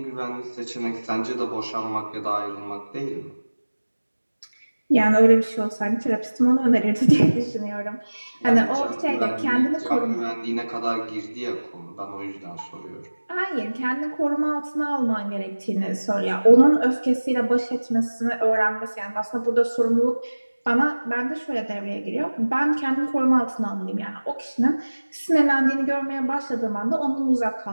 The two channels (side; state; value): both; inverted; correlation -1.00